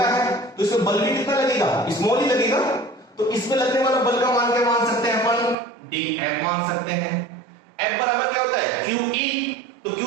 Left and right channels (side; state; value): left; drops out; at 5.6 s